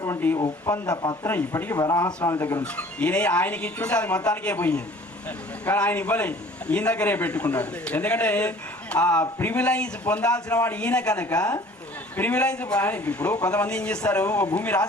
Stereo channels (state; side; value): normal; both; correlation 0.50